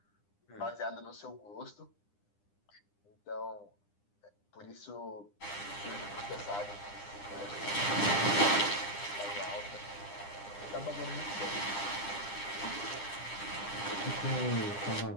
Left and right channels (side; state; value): right; late; 9.9 ms